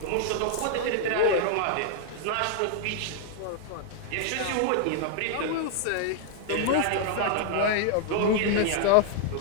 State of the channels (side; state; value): both; different; correlation 0.00